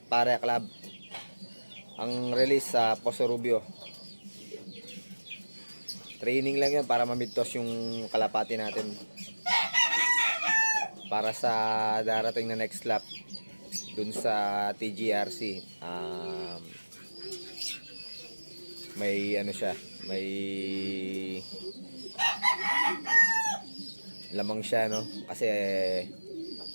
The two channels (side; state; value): both; inverted; correlation -1.00